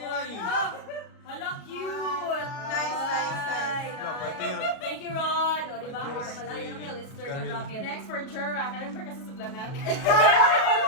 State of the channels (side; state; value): right; late; 37 ms